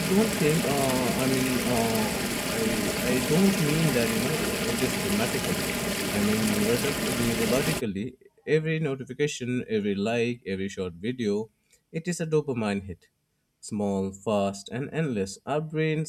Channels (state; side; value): identical; both; correlation 1.00